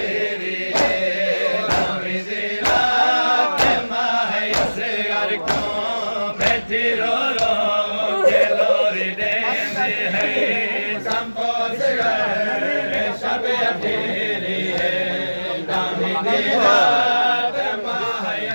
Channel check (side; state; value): both; inverted; correlation -1.00